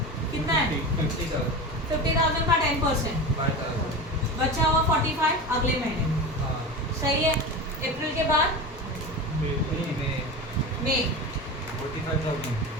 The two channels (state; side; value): normal; both; correlation 0.26